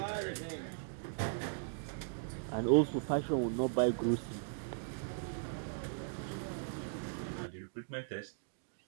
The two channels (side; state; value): left; silent; digital silence